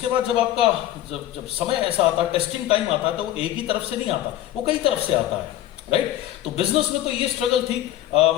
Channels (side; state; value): right; quieter; 13.3 dB